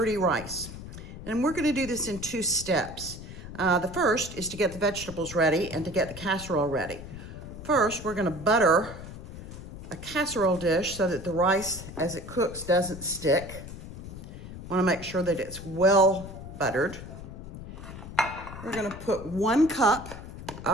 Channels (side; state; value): left; noise; rumble, 12 dB below the sound